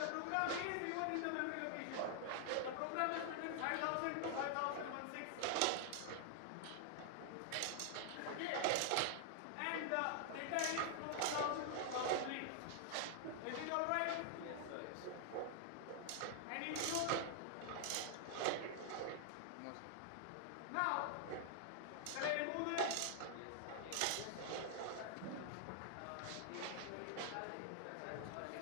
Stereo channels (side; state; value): both; different; correlation 0.00